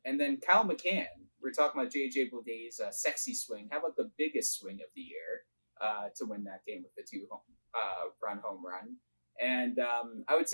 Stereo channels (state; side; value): inverted; both; correlation -1.00